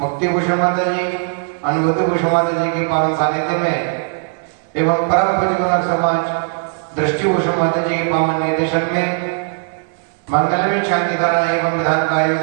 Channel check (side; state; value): left; silent; 67 dB below the other